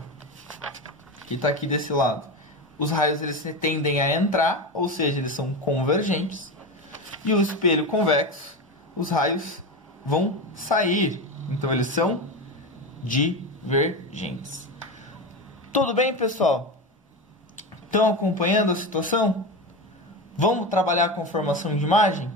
que está aqui desse lado, os raios eles tendem a entrar, ou seja, eles são convergentes. E o espelho convexo, os raios vão sair, então eles são divergentes. Tudo bem, pessoal? Estão acompanhando a situação? Vamos trabalhar com formação de imagem?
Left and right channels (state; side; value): normal; both; correlation 0.20